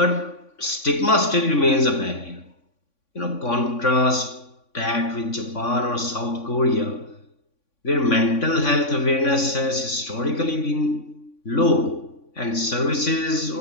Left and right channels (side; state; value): right; late; 3.6 ms